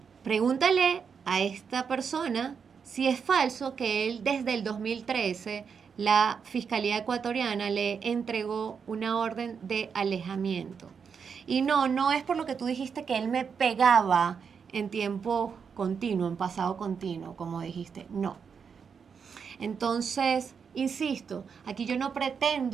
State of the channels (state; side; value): quieter; left; 6.4 dB